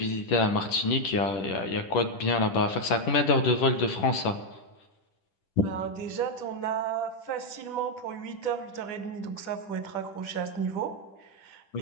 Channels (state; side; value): late; right; 10 ms